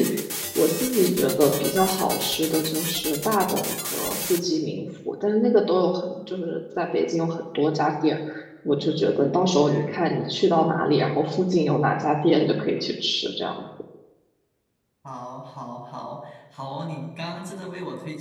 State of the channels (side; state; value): both; identical; correlation 1.00